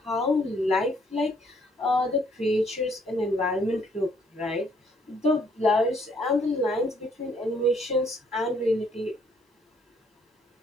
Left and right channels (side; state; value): both; normal; correlation 0.66